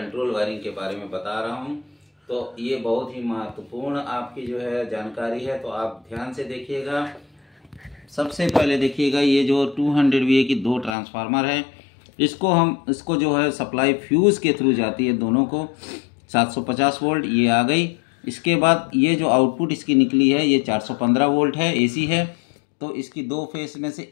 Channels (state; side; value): drops out; right; at 11.0 s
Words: वायरिंग के बारे में बता रहा हूं। तो ये बहुत ही महत्वपूर्ण आपकी जो है जानकारी है, तो आप ध्यान से देखिएगा। सबसे पहले देखिएगा, ये जो 200 VA की दो ट्रांसफार्मर है, इसको जो है सप्लाई फ्यूज़ के थ्रू जाती है दोनों को। 750 वोल्ट ये आ गई। इसके बाद ये जो आउटपुट इसकी निकली है ये 415 वोल्ट है, एसी है। तो इसकी दो फेस में से